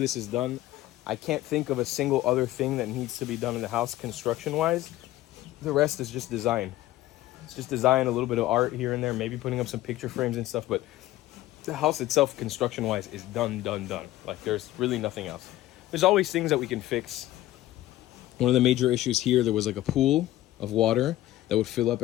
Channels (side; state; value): right; quieter; 15.4 dB